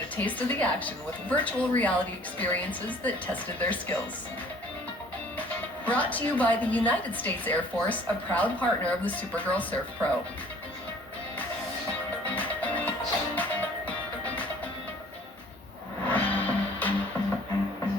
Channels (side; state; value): both; normal; correlation 0.54